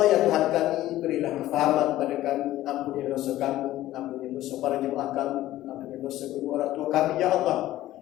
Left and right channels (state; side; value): quieter; right; 14.9 dB